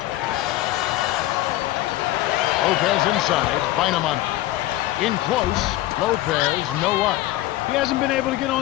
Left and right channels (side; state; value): right; quieter; 16.0 dB